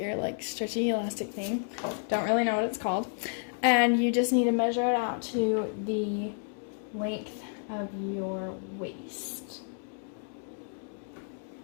stretchy elastic thing. Don't really know what it's called. And you just need to measure it out to the length of your waist.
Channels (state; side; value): silent; right; 56 dB below the other